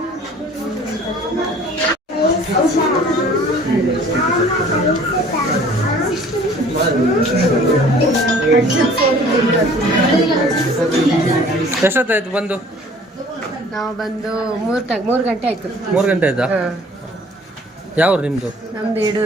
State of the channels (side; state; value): both; normal; correlation 0.51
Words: ಎಷ್ಟೊತ್ತಾಯ್ತು ಬಂದು? ನಾವು ಬಂದು 3 ಗಂಟೆ ಆಯ್ತು. 3 ಗಂಟೆ ಆಯ್ತಾ? ಯಾವ ನಿಮ್ಮದು? ನಮ್ದು